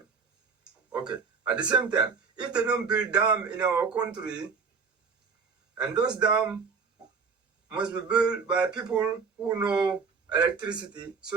Okay, at the same time, if they don't build dam in our country, and those dams must be built by people who know electricity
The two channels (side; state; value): left; quieter; 5.3 dB